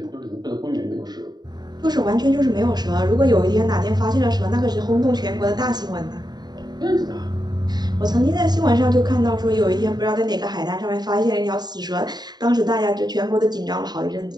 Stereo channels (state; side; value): late; left; 0.20 ms